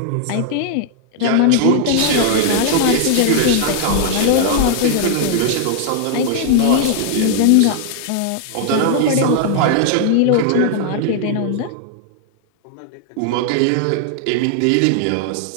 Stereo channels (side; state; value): both; different; correlation 0.00